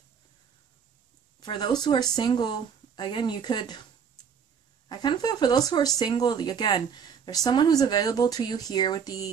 For those who are single, again, I kind of feel for those who are single, again, there's someone who's available to you here with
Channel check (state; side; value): quieter; left; 7.0 dB